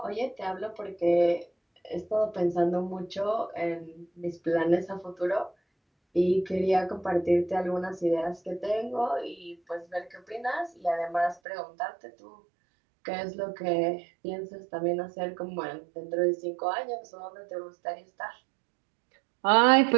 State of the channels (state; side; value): drops out; left; at 11.4 s